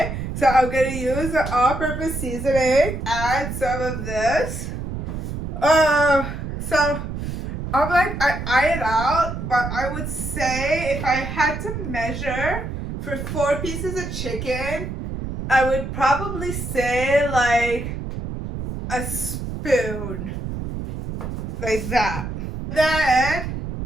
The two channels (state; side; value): noise; right; rumble, 6 dB below the sound